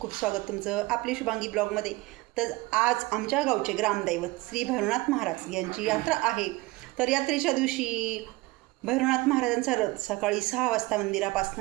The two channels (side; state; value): left; quieter; 21.4 dB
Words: स्वागत तुमचं आपली शुभांगी ब्लॉगमध्ये. तर आज आमच्या गावचे ग्रामदैवत श्री भैरवनाथ महाराज यांची यात्रा आहे. तर यात्रेच्या दिवशी भैरवनाथ महाराजांचा रथ सकाळी 6 वाजता